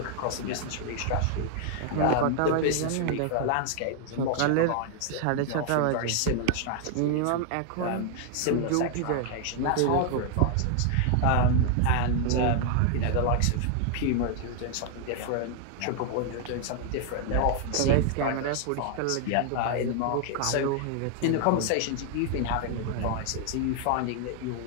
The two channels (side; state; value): both; different; correlation 0.00